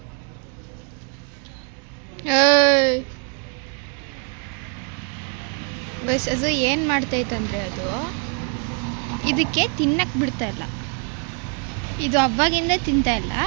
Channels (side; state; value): left; quieter; 39.3 dB